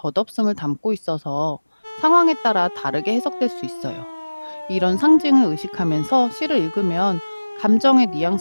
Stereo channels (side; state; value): both; inverted; correlation -1.00